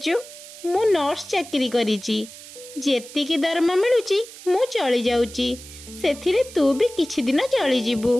ମୁଁ ନର୍ସ ଚାକିରି କରିଛି। ଯେତିକି ଦରମା ମିଳୁଛି ମୁଁ ଚଳି ଯାଉଛି, ସେଥିରେ ତୁ ବି କିଛି ଦିନ ଚଳିଯିବୁ।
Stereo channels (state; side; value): noise; right; hiss, 16 dB below the sound